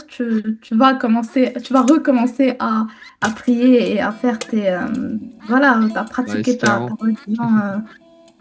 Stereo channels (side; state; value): both; identical; correlation 1.00